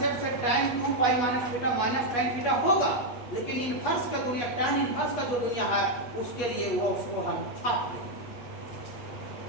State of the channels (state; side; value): late; right; 8.4 ms